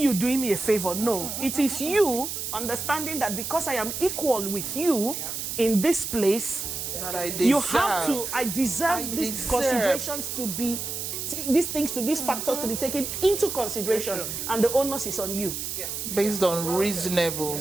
doing me a favor. No, it is you understanding that because I am equal with you in this place, that I deserve. You have to, I deserve these considerations to be, these things, to these factors to be taken into consideration, and the onus is on you. Based on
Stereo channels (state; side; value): noise; right; hiss, 5 dB below the sound